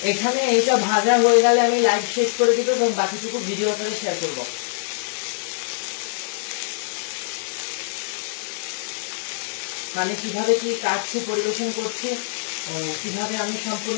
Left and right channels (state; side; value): silent; right; digital silence